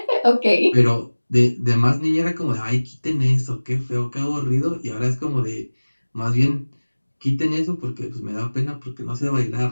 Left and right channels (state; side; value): inverted; both; correlation -1.00